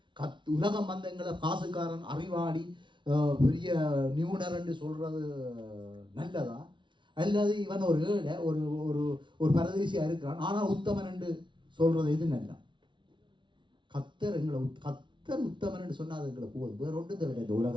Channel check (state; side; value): late; left; 0.24 ms